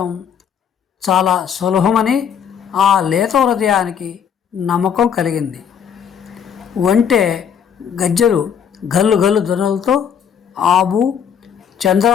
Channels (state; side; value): quieter; right; 7.9 dB